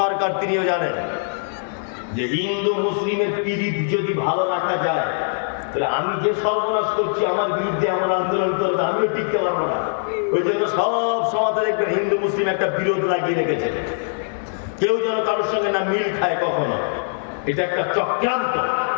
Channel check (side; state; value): right; silent; 61 dB below the other